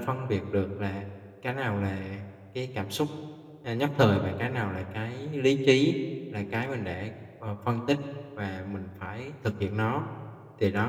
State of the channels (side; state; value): both; identical; correlation 1.00